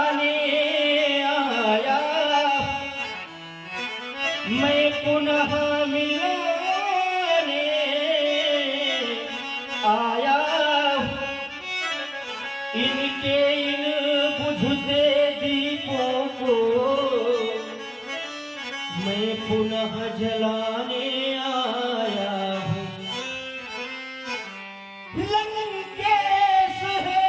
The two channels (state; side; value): identical; both; correlation 1.00